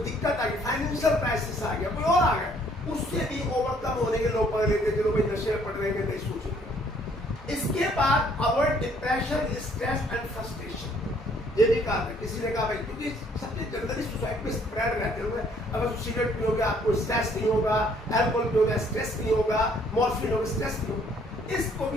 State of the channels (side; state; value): both; normal; correlation 0.63